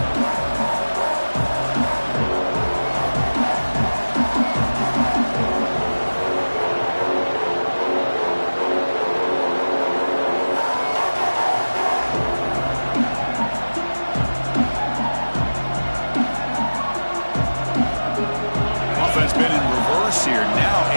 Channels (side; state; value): both; inverted; correlation -1.00